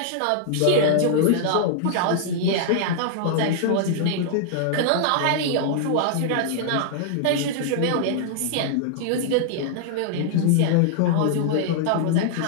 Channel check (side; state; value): both; different; correlation -0.01